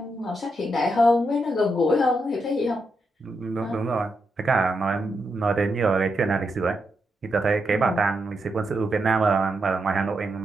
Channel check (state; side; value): normal; both; correlation 0.83